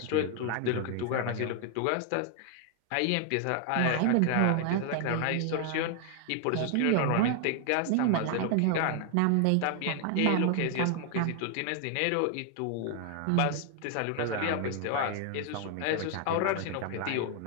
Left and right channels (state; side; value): different; both; correlation 0.00